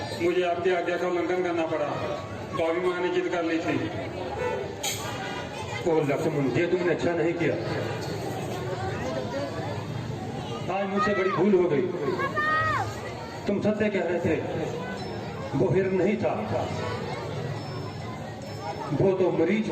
मुझे आपकी आज्ञा का उल्लंघन करना पड़ा, भाभी माँ ने जिद कर ली थी। ओ लक्ष्मण, ये तुमने अच्छा नहीं किया। आज मुझसे बड़ी भूल हो गई। तुम सत्य कह रहे थे, वो हिरण नहीं था, वो तो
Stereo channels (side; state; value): both; identical; correlation 1.00